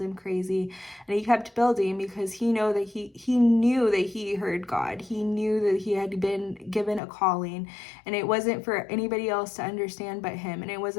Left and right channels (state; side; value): drops out; right; at 7.0 s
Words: crazy, and he kept building because he knew that he heard God. He knew that he had been given a calling, and it wasn't for anybody else to understand but him, and it